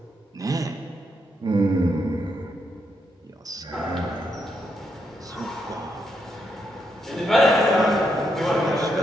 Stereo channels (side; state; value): both; normal; correlation 0.80